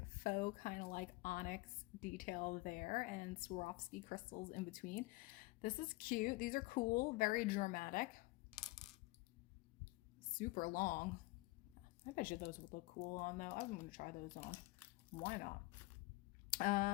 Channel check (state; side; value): quieter; right; 22.2 dB